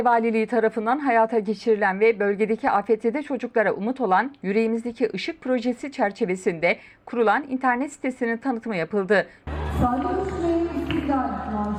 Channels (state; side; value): identical; both; correlation 1.00